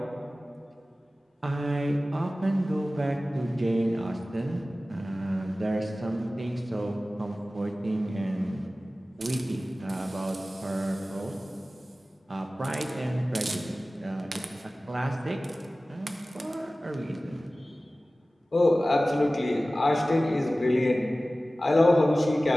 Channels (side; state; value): both; normal; correlation 0.97